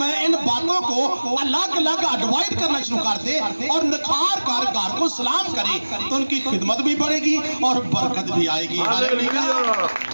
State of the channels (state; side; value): inverted; both; correlation -1.00